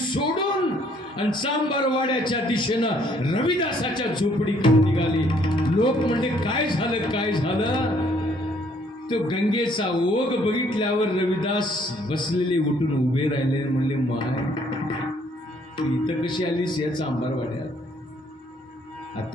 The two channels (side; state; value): both; normal; correlation 0.64